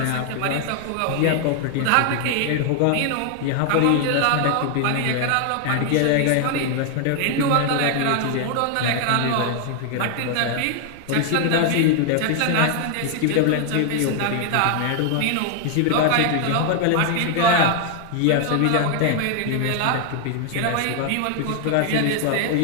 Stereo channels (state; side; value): different; both; correlation 0.00